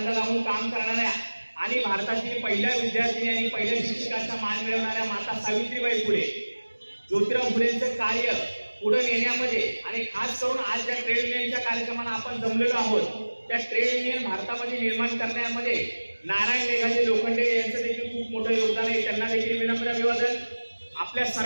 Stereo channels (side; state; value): both; inverted; correlation -1.00